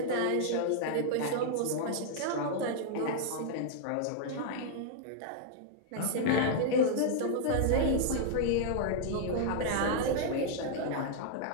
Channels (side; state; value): both; different; correlation -0.01